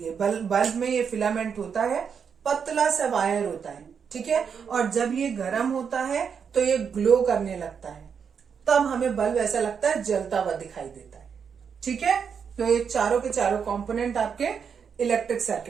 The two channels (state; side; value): quieter; left; 6.8 dB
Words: बल्ब में ये फिलामेंट होता है, पतला सा वायर होता है। ठीक है, और जब ये गर्म होता है तो ये ग्लो करने लगता है, तब हमें बल्ब ऐसा लगता है जलता हुआ दिखाई देता है। ठीक है, तो ये चारों के चारों कंपोनेंट आपके इलेक्ट्रिक